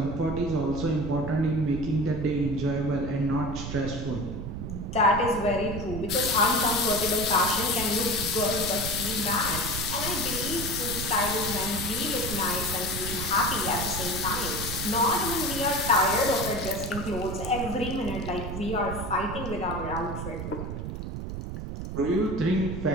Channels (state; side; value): noise; right; rumble, 6 dB below the sound